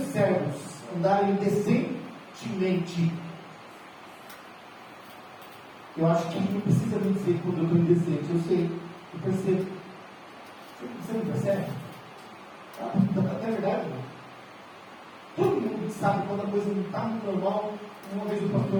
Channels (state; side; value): identical; both; correlation 1.00